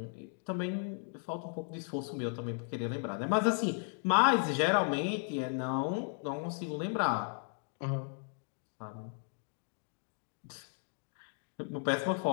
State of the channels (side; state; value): right; silent; 54 dB below the other